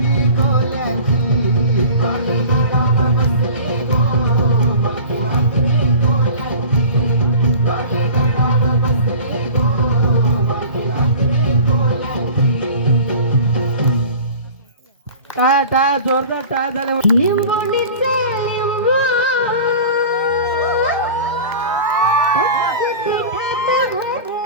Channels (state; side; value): inverted; both; correlation -0.40